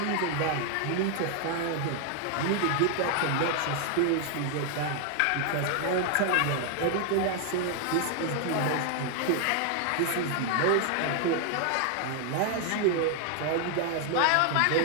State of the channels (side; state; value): both; different; correlation 0.00